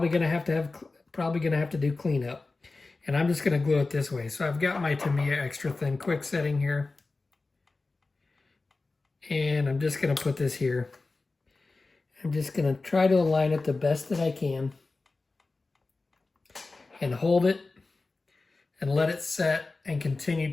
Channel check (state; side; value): quieter; right; 3.6 dB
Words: going to have to do cleanup. And I'm just going to glue it this way. So I've got my Tamiya extra thin quick setting here. And I'm just going to put this here. I'm just going to try to align it the best that I can. And hold it. And let it set and